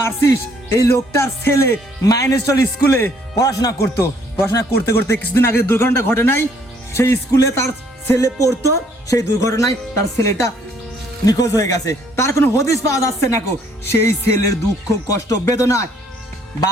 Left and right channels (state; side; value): normal; both; correlation 0.64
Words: এই লোকটার ছেলে মাইনেস্টল স্কুলে পড়াশোনা করতে করতে কিছুদিন আগে দুর্ঘটনা ঘটে নাই সেই স্কুলে তার ছেলে পড়তো সেই দুর্ঘটনায় তার ছেলেটা নিখোঁজ হয়ে গেছে তার কোনো হদিস পাওয়া যাচ্ছে না কো সেই ছেলের দুঃখ কষ্ট বেদনায়